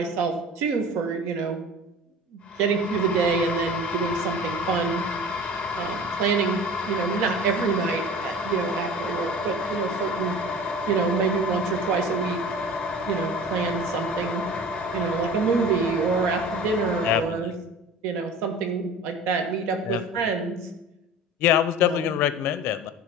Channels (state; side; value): normal; both; correlation 0.39